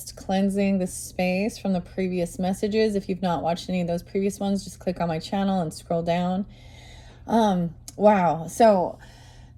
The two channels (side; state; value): both; identical; correlation 1.00